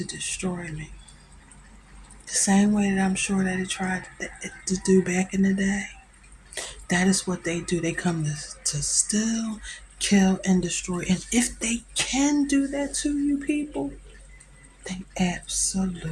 destroy me. The same way that I'm sure that it tried to do back in the day. That is what they do. They come to steal, kill, and destroy. And if they can do that to you people, they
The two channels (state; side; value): identical; both; correlation 1.00